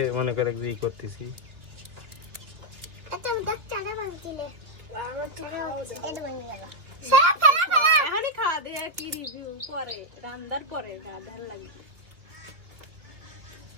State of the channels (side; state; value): left; late; 2.8 ms